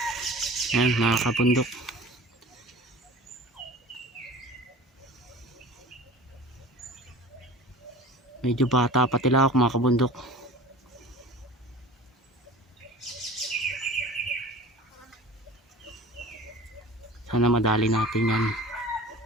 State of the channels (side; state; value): both; normal; correlation 0.41